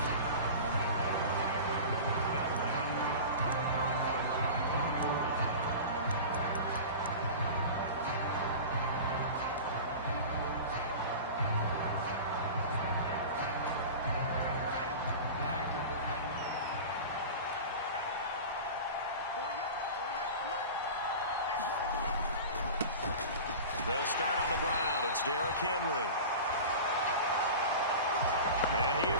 They'll start on the ground. It's Derrick Henry. And he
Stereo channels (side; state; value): both; inverted; correlation -0.32